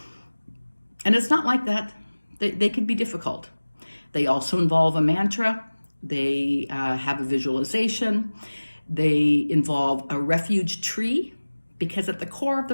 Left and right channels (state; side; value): inverted; both; correlation -1.00